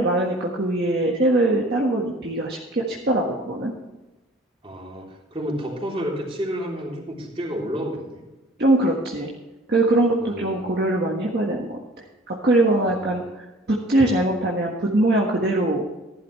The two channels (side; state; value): both; normal; correlation 0.51